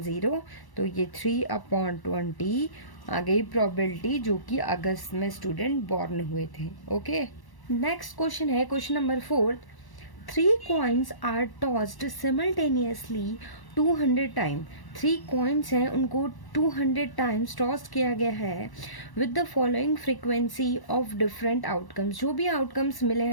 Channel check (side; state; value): right; late; 1.1 ms